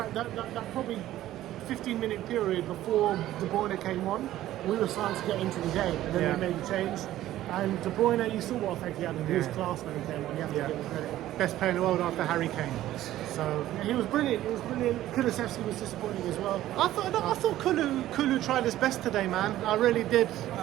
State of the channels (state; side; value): quieter; left; 14.0 dB